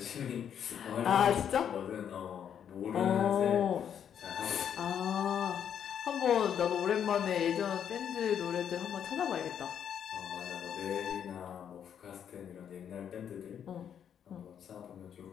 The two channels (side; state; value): right; quieter; 8.7 dB